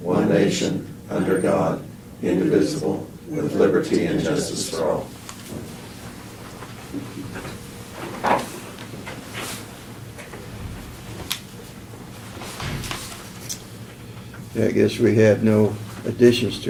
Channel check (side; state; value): both; identical; correlation 1.00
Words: nation, under God, indivisible, with liberty and justice for all. Yeah, I guess we have no additions